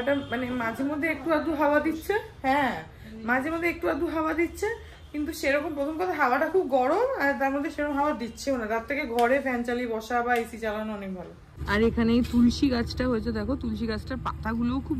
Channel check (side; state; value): both; identical; correlation 1.00